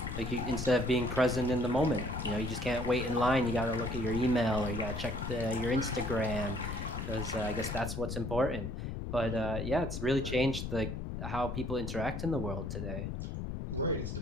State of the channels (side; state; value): left; noise; rumble, 5 dB below the sound